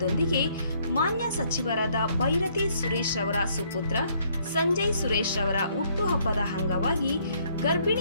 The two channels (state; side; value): inverted; both; correlation -0.67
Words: ಮಾನ್ಯ ಸಚಿವರಾದ ಭೈರತಿ ಸುರೇಶ್ ಅವರ ಸುಪುತ್ರ ಸಂಜಯ್ ಸುರೇಶ್ ಅವರ ಹುಟ್ಟುಹಬ್ಬದ ಅಂಗವಾಗಿ